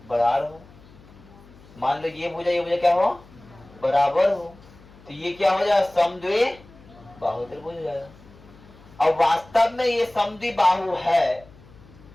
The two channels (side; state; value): left; noise; hum, 24 dB below the sound